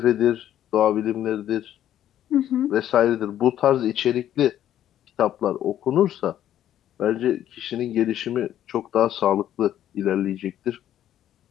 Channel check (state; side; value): quieter; right; 11.5 dB